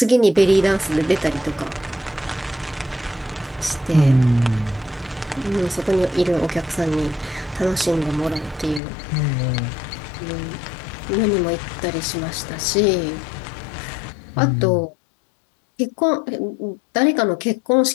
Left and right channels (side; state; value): right; drops out; at 8.8 s